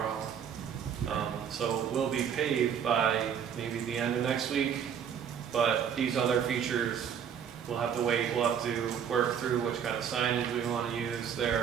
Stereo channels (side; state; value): left; quieter; 8.1 dB